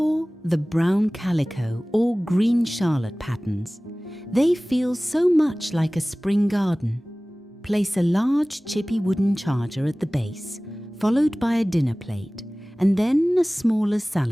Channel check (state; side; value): normal; both; correlation 0.98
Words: the brown calico or green charlotte patterns. They feel so much like a spring garden. Place a large chippy wooden charger at the base, followed by a dinner plate, and then a smaller